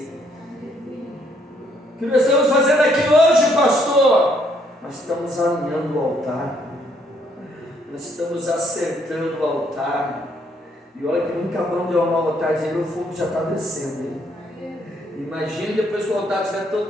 O que nós estamos fazendo aqui hoje, pastor? Nós estamos alinhando o altar. Nós estamos acertando o altar. E olha que nunca acabamos de arrumar o altar, dizendo o fogo já está descendo. Hein? Imagine depois que o altar estiver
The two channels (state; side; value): normal; both; correlation 0.69